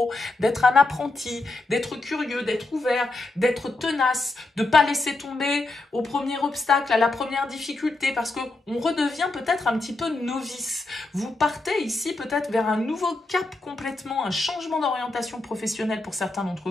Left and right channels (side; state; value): right; quieter; 3.0 dB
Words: d'être un apprenti, d'être curieux, d'être ouvert, d'être tenace, de ne pas laisser tomber au premier obstacle, à la première difficulté, parce qu'on redevient peut-être un petit peu novice. Vous partez ici peut-être vers un nouveau cap complètement, un changement d'orientation professionnelle pour certains d'entre